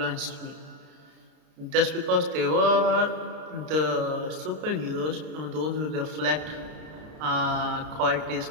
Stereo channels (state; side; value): late; left; 32 ms